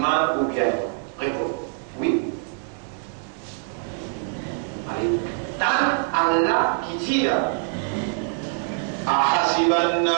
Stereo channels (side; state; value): left; silent; 62 dB below the other